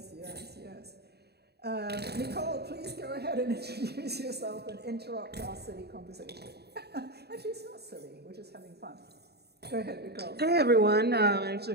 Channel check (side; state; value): left; late; 0.47 ms